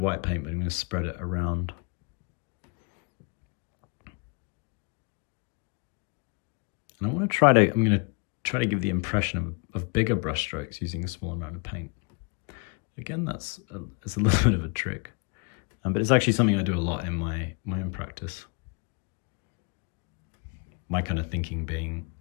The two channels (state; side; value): quieter; right; 34.2 dB